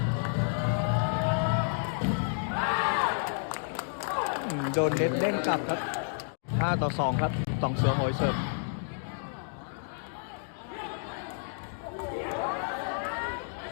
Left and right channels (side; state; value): right; silent; digital silence